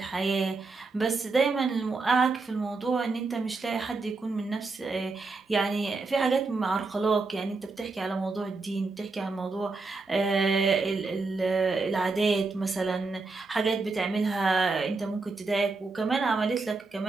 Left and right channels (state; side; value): quieter; left; 3.9 dB